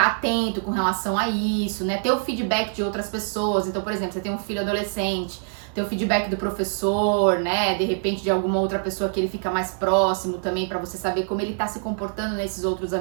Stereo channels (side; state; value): left; silent; 56 dB below the other